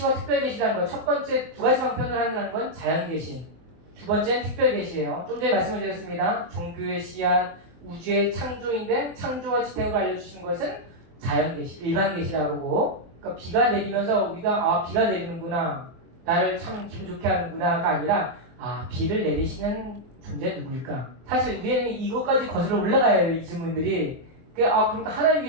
특별계시라는 거. 첫 번째 두 가지 방편을 하는 건 자연계시. 두 번째는 특별계시예요. 좀 전에 말씀을 드렸습니다. 종교의 씨앗, 우주의 창조인데 창조와 지탱으로 알려주신 것은 자연계시, 일반계시라고 그러고, 그러니까 비가 내리면서 우리가 비가 내리는구나, 나를 참 기분 좋게 하는구나가 아니라 비를 내리시는 존재 누구일까? 사실 우리는 이것까지 거슬러 올라가야 해요. 이 질문들이. 그러니까 하나님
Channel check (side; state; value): left; late; 24 ms